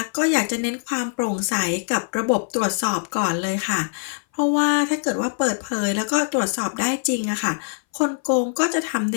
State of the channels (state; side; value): silent; right; 60 dB below the other